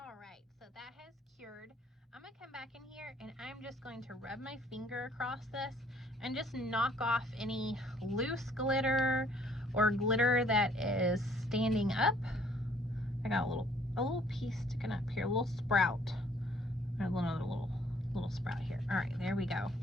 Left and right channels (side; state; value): both; normal; correlation 0.61